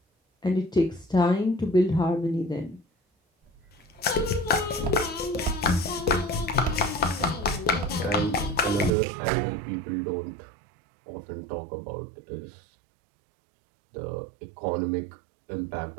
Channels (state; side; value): drops out; left; at 8.9 s